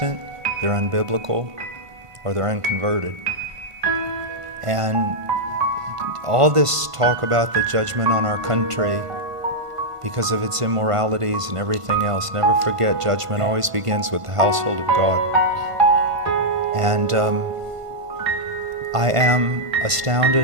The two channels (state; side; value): late; left; 1.5 ms